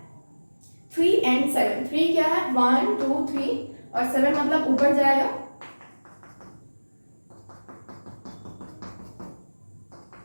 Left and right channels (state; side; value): inverted; both; correlation -1.00